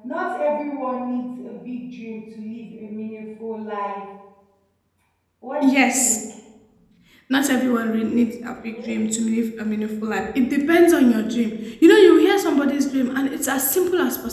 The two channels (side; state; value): both; identical; correlation 1.00